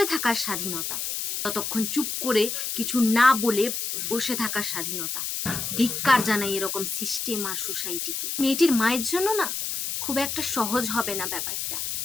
থাকার স্বাধীনতা, ততক্ষণ চুপ করে কিছু না বলে বসে থাকার স্বাধীনতা? ধিক্কার জানাই এরকম সিস্টেম আর সোসাইটিকে। মেয়েটির মায়ের জন্য না খুব একটা সহজ হবে না ব্যাপারটা।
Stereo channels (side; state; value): left; noise; hiss, 3 dB below the sound